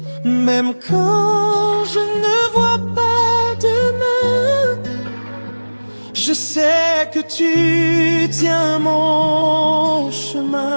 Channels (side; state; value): both; inverted; correlation -1.00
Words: Même quand je ne vois pas demain, je sais que tu tiens mon